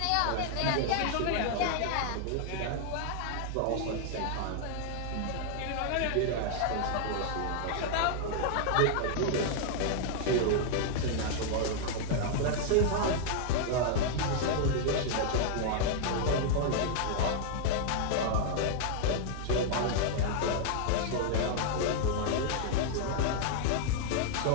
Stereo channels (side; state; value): both; different; correlation 0.00